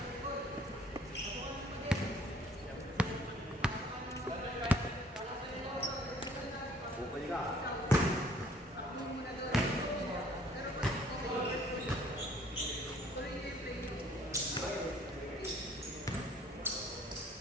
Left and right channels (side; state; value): both; normal; correlation 0.58